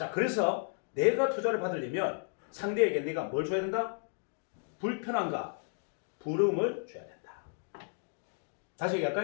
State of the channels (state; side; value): silent; right; digital silence